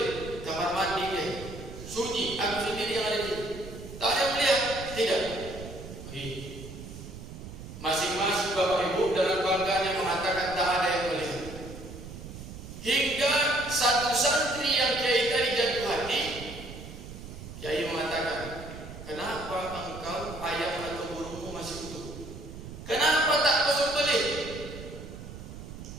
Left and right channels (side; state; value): right; noise; rumble, 12 dB below the sound